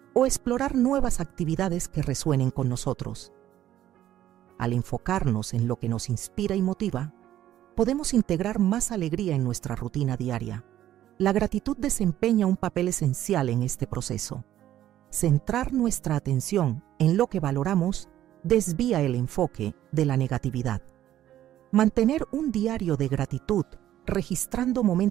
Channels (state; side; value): quieter; left; 12.5 dB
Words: o explorar nuevas actividades que resuenen con nosotros. Al enfocarnos en lo que nos inspira y motiva, podemos integrar más alegría en nuestra rutina diaria. La gratitud desempeña un papel esencial en este proceso. Centrar nuestra atención en lo que valoramos desvía el enfoque de la negatividad. Mantener un diario de gratitud, registrando